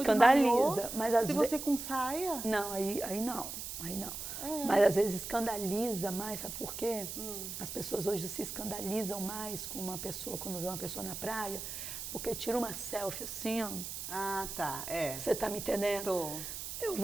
mas às vezes... Se você com saia... Não, aí não. Mas às vezes escandaliza mais, sabe por quê? As pessoas hoje se escandalizam mais com uma pessoa, quando vê uma pessoa na praia, porque tira uma selfie assim, ó. Ah, tá, Você tá me entendendo? Tô. Eu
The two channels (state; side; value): noise; right; hiss, 7 dB below the sound